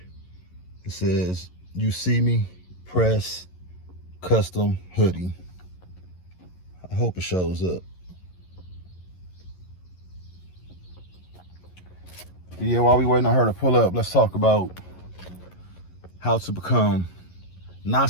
It says YOUCME Press custom hoodie. I hope it shows up. But yeah, while we waiting on her to pull up, let's talk about how to become not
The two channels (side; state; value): right; late; 11 ms